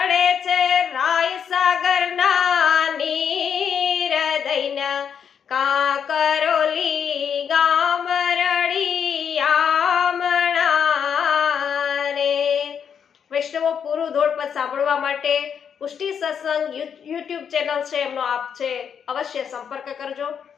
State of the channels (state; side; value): quieter; right; 7.6 dB